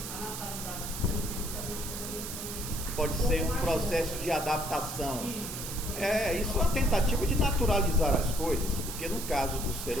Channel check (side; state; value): right; noise; hiss, 7 dB below the sound